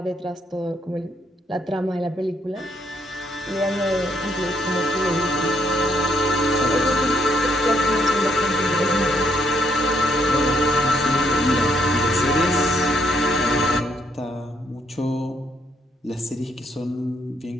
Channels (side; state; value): both; normal; correlation 0.73